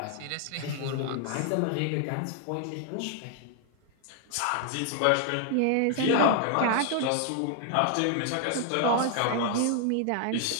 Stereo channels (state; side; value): different; both; correlation 0.00